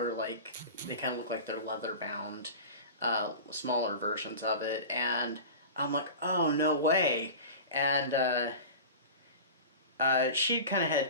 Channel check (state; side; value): inverted; both; correlation -0.32